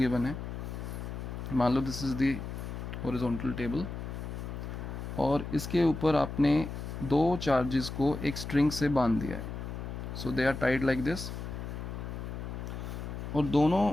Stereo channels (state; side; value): noise; left; hum, 7 dB below the sound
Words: है। मान लो this is the horizontal table, और इसके ऊपर आपने दो चार्जेस को एक स्ट्रिंग से बांध दिया है। So they are tied like this, और